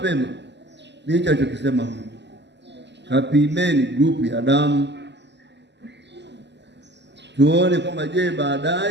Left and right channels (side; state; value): left; late; 0.50 ms